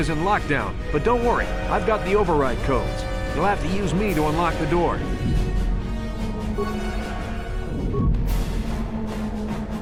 in lockdown. But don't worry, I've got the override codes. You'll have to use me to unlock the door.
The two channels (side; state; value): both; identical; correlation 1.00